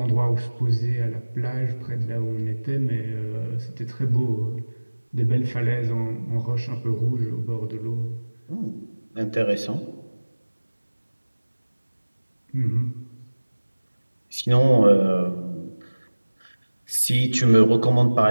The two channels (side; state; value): both; inverted; correlation -1.00